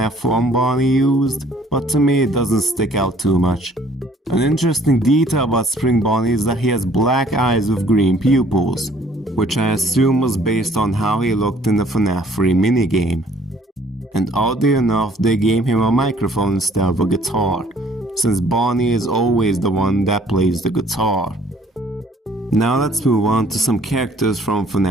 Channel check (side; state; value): both; normal; correlation 0.58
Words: 1 Bonnie used, but to me it doesn't stick out too much. An interesting detail about Spring Bonnie is that he has black eyes with green pupils, which I assume was based on how he looked in the Fnaf 3 minigame. And oddly enough, they gave him a microphone instead of a guitar, since Bonnie is always the one that plays the guitar. Now let's move on to some characters from